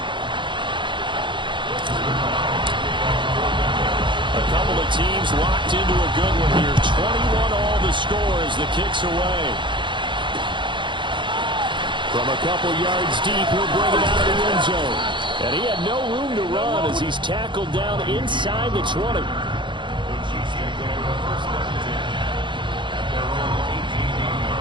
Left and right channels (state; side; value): late; left; 0.23 ms